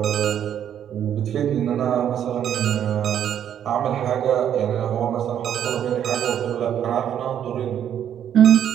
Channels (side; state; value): left; quieter; 9.7 dB